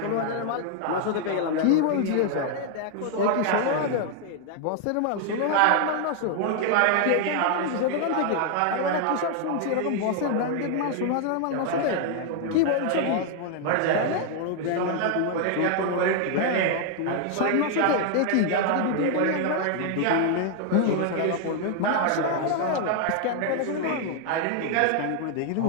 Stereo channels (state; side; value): different; both; correlation 0.00